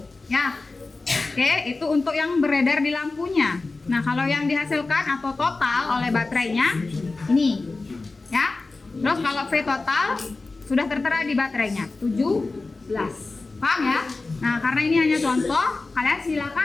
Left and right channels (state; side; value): quieter; right; 3.6 dB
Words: ya. Oke, itu untuk yang beredar di lampunya. Nah, kalau yang dihasilkan atau total oleh baterainya ini, ya. Terus kalau V total sudah tertera di baterainya 17. Paham ya? Nah, karena ini hanya contoh, kalian